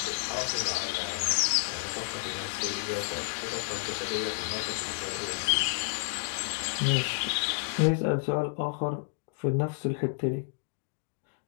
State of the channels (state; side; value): silent; right; digital silence